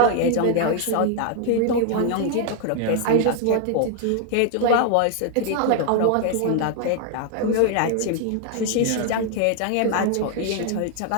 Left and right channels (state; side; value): different; both; correlation 0.00